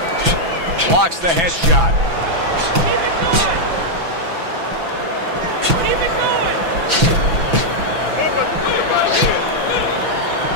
Blocks the headshot.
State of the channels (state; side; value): late; left; 6.0 ms